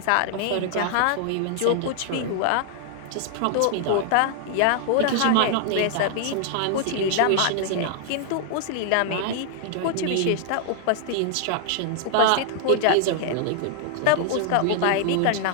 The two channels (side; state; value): both; different; correlation -0.01